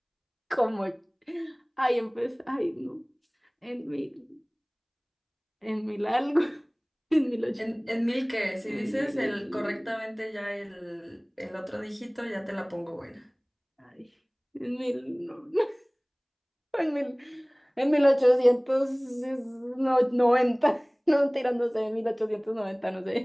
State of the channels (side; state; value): both; identical; correlation 1.00